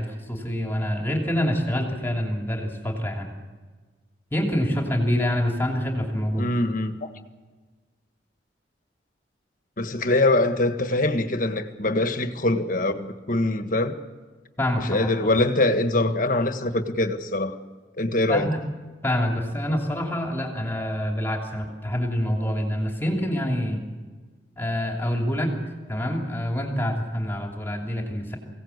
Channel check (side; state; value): both; normal; correlation 0.52